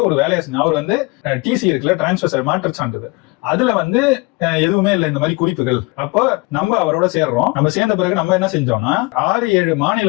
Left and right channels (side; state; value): right; quieter; 25.3 dB